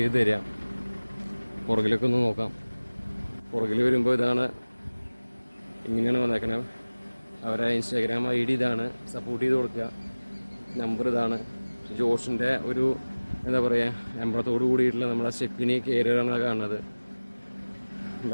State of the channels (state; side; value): inverted; both; correlation -1.00